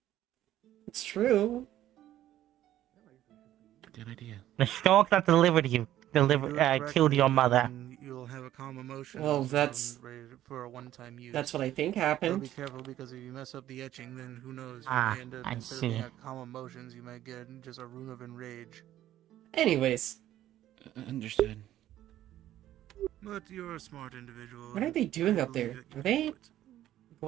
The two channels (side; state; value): left; quieter; 12.9 dB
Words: It's true. Good idea. The stork that delivered you, Do it killed your correctly, mother. and you'll have a calm emotion. Well, zone that's- ready for a one-time use. That's what I think But happened. be careful because if you mess up the etching, then who knows? You Ah, may end up, I instead of being see. a calm emotions, you might get just a rune of enrage. Anyways, Understood. But you're a smart individual. what are they doing up there? Are they